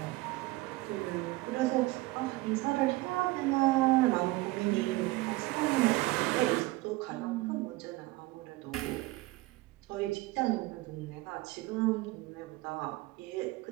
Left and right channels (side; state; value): left; quieter; 20.2 dB